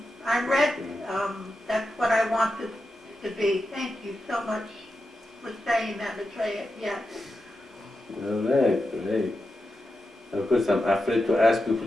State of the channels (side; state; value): both; normal; correlation 0.89